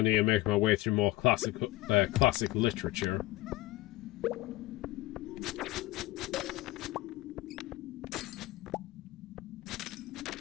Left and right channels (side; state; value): right; quieter; 17.8 dB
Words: to make my way through more classic literature?